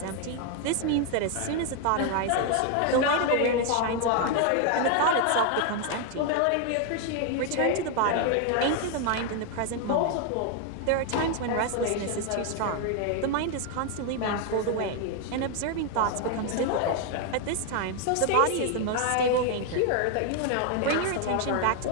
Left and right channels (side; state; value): both; different; correlation 0.00